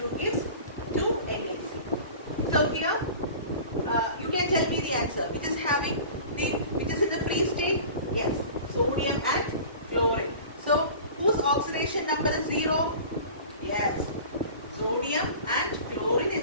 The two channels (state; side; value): inverted; both; correlation -0.40